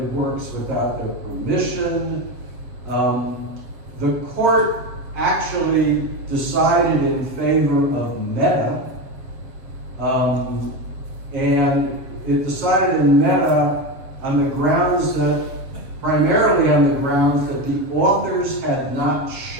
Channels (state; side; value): late; left; 7.4 ms